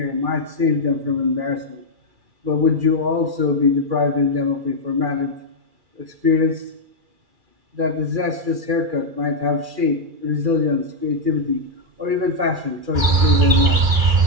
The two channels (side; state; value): left; late; 2.4 ms